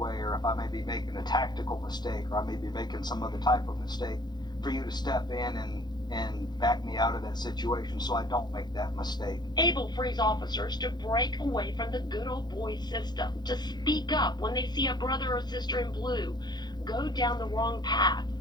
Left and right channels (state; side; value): late; right; 0.21 ms